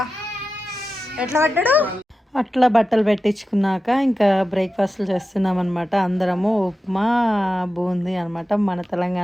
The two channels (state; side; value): normal; both; correlation 0.92